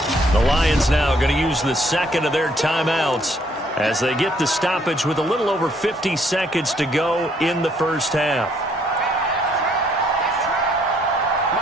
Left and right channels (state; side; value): normal; both; correlation 0.66